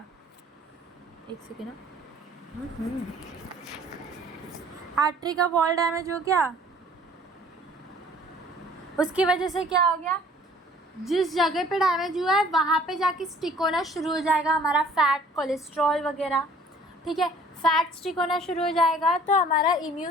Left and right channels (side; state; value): both; normal; correlation 0.54